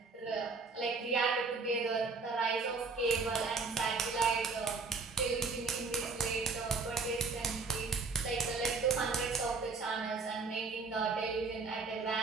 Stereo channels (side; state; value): left; quieter; 4.4 dB